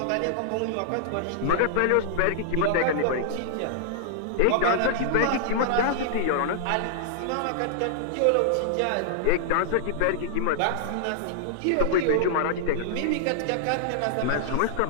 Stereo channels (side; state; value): both; different; correlation -0.01